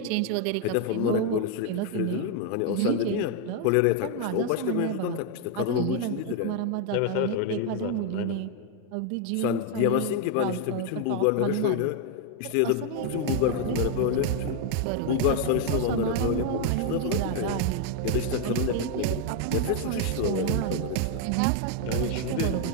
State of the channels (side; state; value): both; different; correlation 0.01